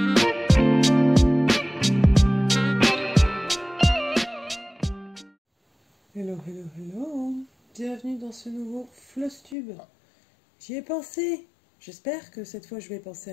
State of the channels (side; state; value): right; drops out; at 9.6 s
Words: hello, hello. Bienvenue dans ce nouveau Flosstube. J'y ai pensé. J'espère que cette fois je vais penser